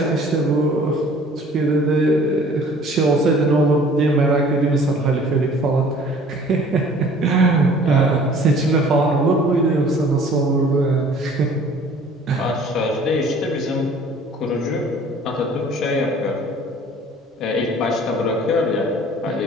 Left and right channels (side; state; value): both; normal; correlation 0.51